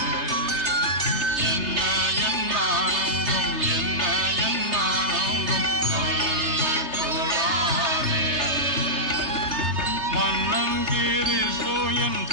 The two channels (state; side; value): late; left; 3.3 ms